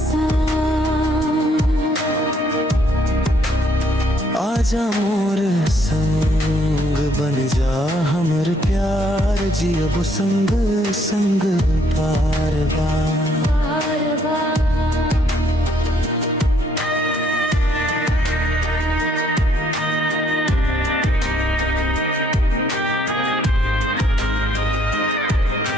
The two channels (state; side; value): normal; both; correlation 0.67